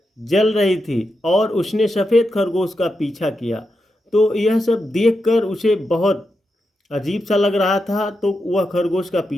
जल रही थी और उसने सफ़ेद खरगोश का पीछा किया। तो यह सब देखकर उसे बहुत अजीब सा लग रहा था, तो वह खरगोश का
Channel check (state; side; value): normal; both; correlation 0.87